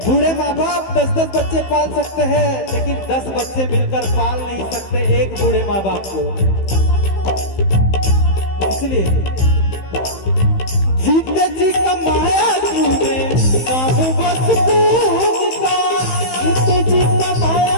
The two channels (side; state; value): right; late; 15 ms